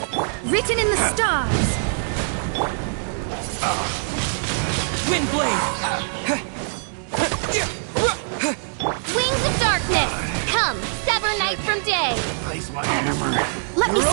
Written in the stars. Windblade! Wings of darkness. Come, sever night from day. Replace my hammer. Let me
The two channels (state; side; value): silent; left; digital silence